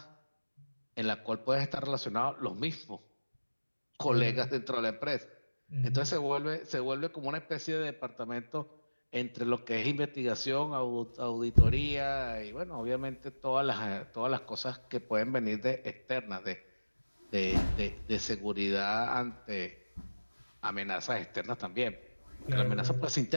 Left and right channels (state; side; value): inverted; both; correlation -1.00